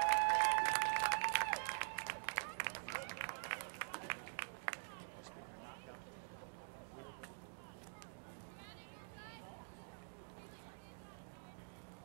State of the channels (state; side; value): silent; left; digital silence